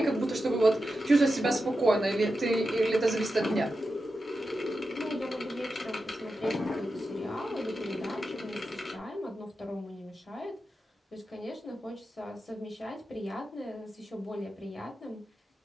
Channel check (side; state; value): both; normal; correlation 0.90